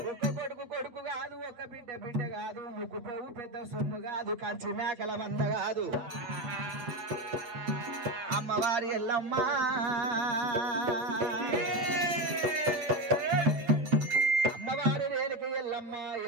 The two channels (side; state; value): left; late; 8.6 ms